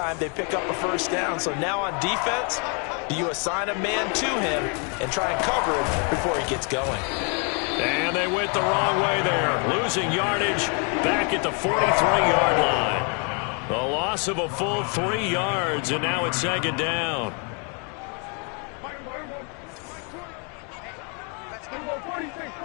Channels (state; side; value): quieter; right; 37.1 dB